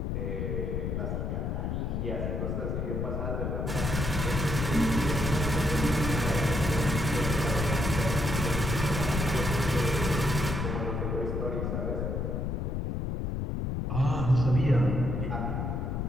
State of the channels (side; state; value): left; noise; rumble, 1 dB below the sound